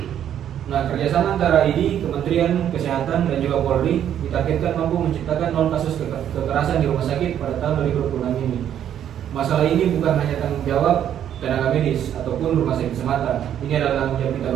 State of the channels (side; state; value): left; quieter; 10.1 dB